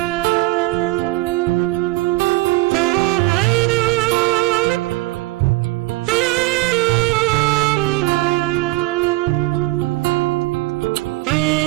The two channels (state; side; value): quieter; left; 20.5 dB